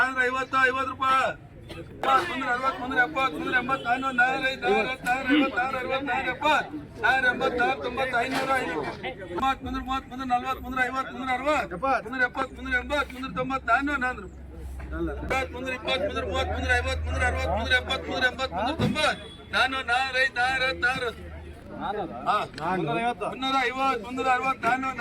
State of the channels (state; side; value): identical; both; correlation 1.00